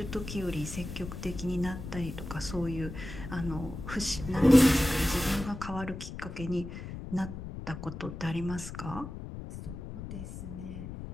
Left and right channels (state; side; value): noise; left; rumble, 9 dB below the sound